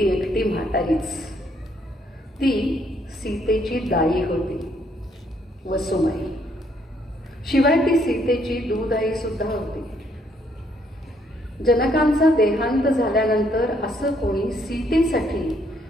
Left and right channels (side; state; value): both; normal; correlation 0.69